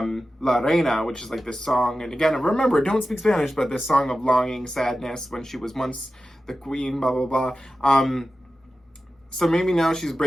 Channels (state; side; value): normal; both; correlation 0.93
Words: Reina, which is like this song. And again, remember, don't speak Spanish, but this song of longing, sadness, when she was once the queen, blah, blah, blah. So maybe now she's